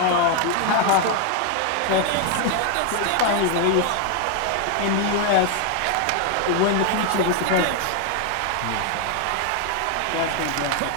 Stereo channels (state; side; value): different; both; correlation 0.01